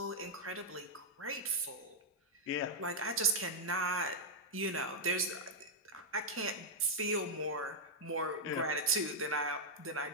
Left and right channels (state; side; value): normal; both; correlation -0.04